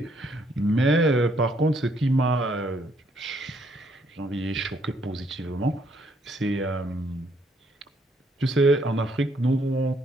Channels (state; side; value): normal; both; correlation 0.69